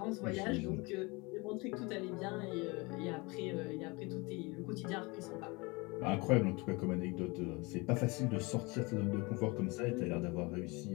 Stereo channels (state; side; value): quieter; right; 26.2 dB